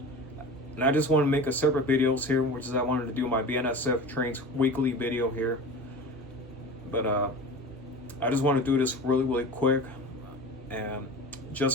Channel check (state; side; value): normal; both; correlation 0.34